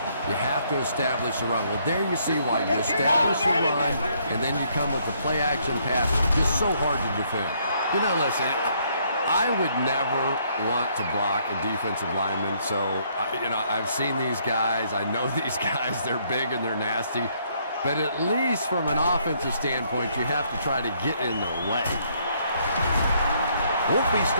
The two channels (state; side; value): inverted; both; correlation -0.69